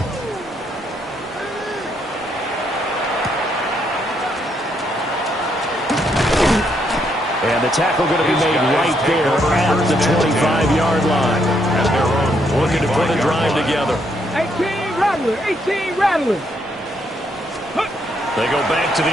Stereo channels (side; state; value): both; normal; correlation 0.74